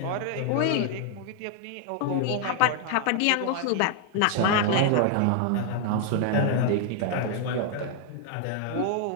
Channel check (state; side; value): different; both; correlation 0.00